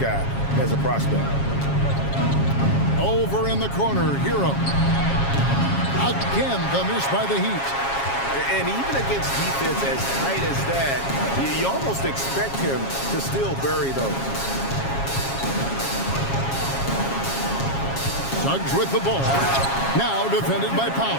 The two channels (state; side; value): late; right; 7.3 ms